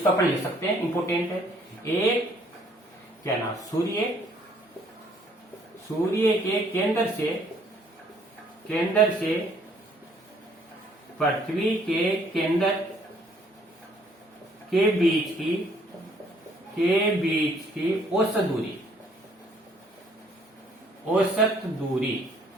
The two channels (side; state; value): both; normal; correlation 0.63